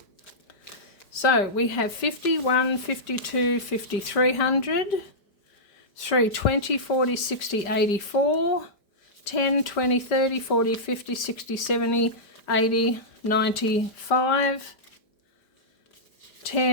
So we have 51, 52, 5300, 320, 40, 60, 84, 10, 20, 30, 40, 50, 60, 70, 80, 95,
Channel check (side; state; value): right; late; 5.1 ms